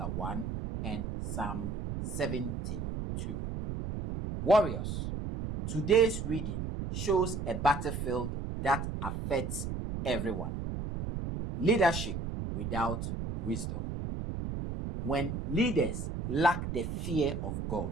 1, and Psalm 72. Warriors, today's reading shows a battlefield that affects everyone. Leadership without wisdom. When leaders lack the fear of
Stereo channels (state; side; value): noise; right; rumble, 4 dB below the sound